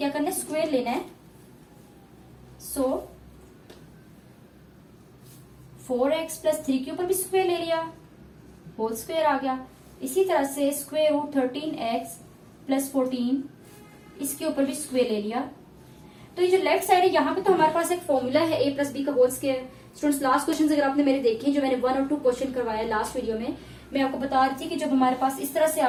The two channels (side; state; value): both; identical; correlation 1.00